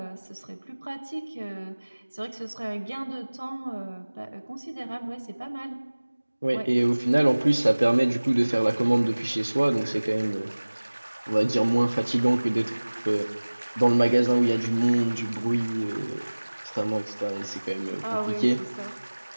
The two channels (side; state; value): both; inverted; correlation -1.00